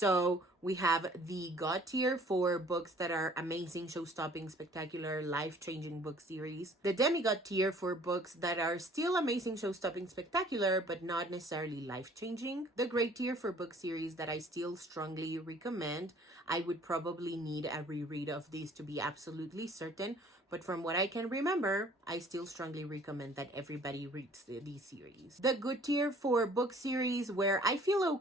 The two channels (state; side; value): normal; both; correlation 0.54